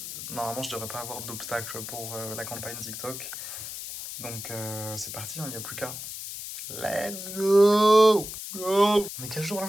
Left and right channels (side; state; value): left; noise; hiss, 8 dB below the sound